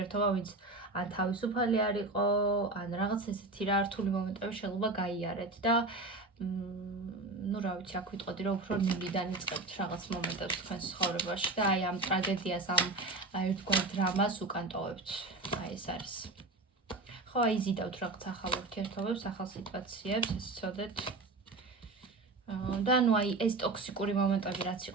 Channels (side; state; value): left; quieter; 3.1 dB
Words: ვინც ან თავისუფალი არ იყო, ან რაღაც ესეთი რა რთული მომენტები შეიძლება გაიარეთ და ну, რა ვიცი, აქ ვიტყოდი რომ უფრო ნულიდან იწყებთ რაღაც მომენტებს თქვენს ცხოვრებაში და აი ამ ტრაგედიას, ამ ერთგვარ დრამას უკან ტოვებთ. აი ეს არის. ხო, აი იზიდავთ რაღაც ახალ ურთიერთობებს, ახალ სიტუაციებს, ეს ცოდეთ. და ნუ აი ეს ტოქსიკური მომენტები რაც